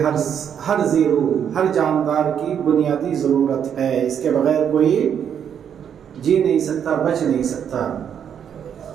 ہر ذی روح، ہر جاندار کی بنیادی ضرورت ہے. اس کے بغیر کوئی جی نہیں سکتا، بچ نہیں سکتا.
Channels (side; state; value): left; quieter; 8.4 dB